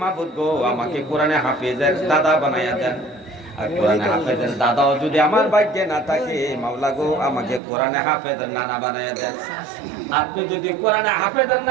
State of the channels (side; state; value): left; drops out; at 7.6 s